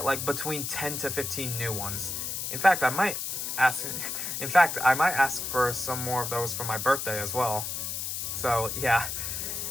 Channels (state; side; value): noise; left; hiss, 3 dB below the sound